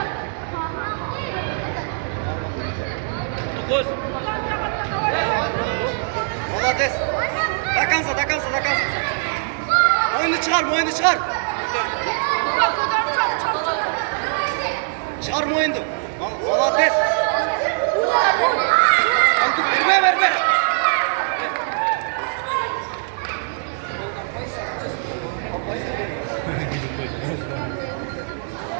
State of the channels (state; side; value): silent; left; 62 dB below the other